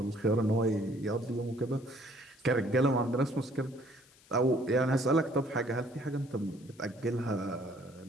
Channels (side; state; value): left; noise; hiss, 27 dB below the sound